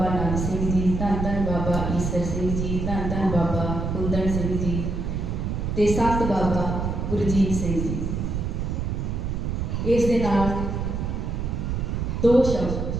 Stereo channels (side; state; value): right; noise; rumble, 2 dB below the sound